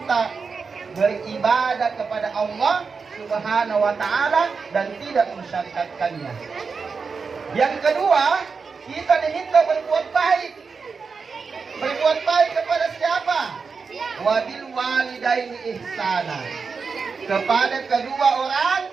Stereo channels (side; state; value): left; quieter; 5.1 dB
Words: beribadah kepada Allah Subhanahu wa taala dan tidak mensyarikatkannya. Yang kedua, kita diminta berbuat baik. Berbuat baik kepada siapa? Wabil walidaini ihsana. Kepada kedua orang.